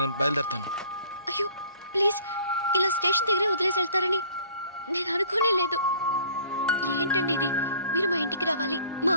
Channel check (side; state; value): both; inverted; correlation -0.52